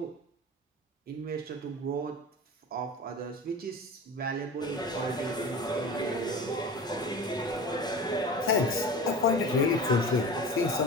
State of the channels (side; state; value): both; normal; correlation 0.34